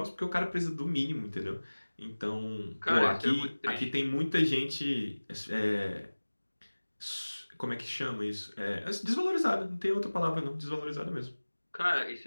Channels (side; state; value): both; inverted; correlation -1.00